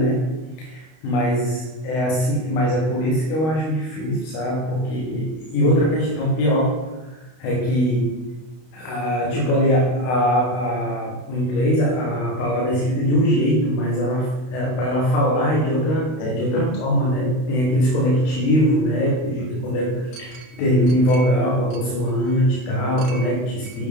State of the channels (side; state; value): right; late; 32 ms